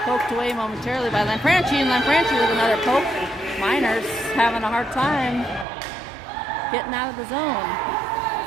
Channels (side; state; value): left; drops out; at 5.7 s